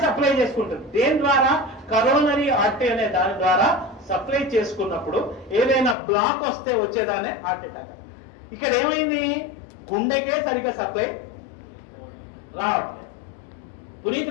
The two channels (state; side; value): drops out; right; at 6.0 s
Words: సప్లై చేసుకుంటుంది. దేని ద్వారా? కరోనరీ ఆర్టరీ అనే దాని ద్వారా సప్లై చేసుకున్నప్పుడు ఏదైనా బ్లాక్ వస్తే వచ్చేదానే హార్ట్ అటాక్. ఇక్కడ ఏమైంది? గుండెకే సరిగ్గా సప్లై రావట్లేదు.